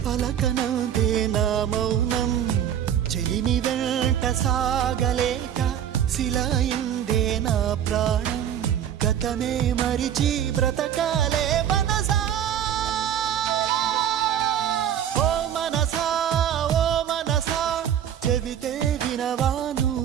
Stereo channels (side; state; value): left; quieter; 9.8 dB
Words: పలకనందే నా మౌనం చెలిమి వెంట సాగలేక శిలయిందే నా ప్రాణం గతమే మరిచి బ్రతకాలే మనసా ఓ మనసా చెబితే వినవా